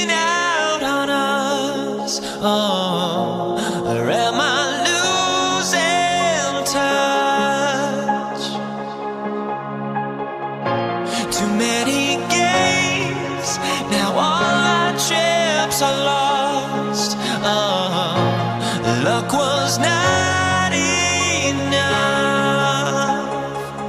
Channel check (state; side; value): identical; both; correlation 1.00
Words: out on us? Oh, or am I losing touch? Too many games, now all our chips are lost. Oh, luck was not enough.